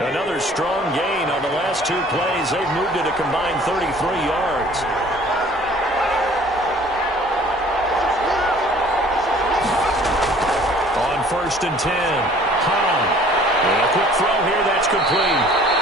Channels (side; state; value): both; normal; correlation 0.52